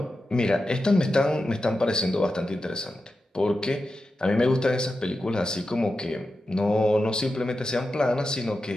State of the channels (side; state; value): both; normal; correlation 0.91